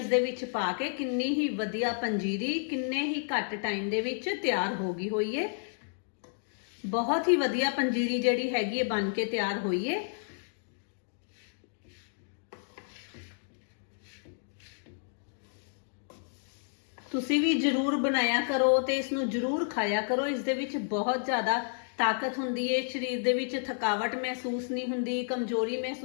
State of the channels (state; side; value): silent; right; digital silence